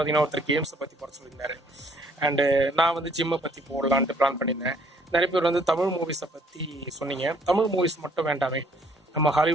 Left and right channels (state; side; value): normal; both; correlation 0.62